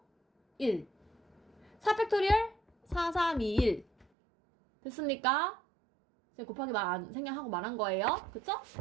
1 4팩토리얼 4, 3, 2, 1 됐습니까? 제가 곱하기 생략하고 말한 거예요. 그쵸?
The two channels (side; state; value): left; drops out; at 4.0 s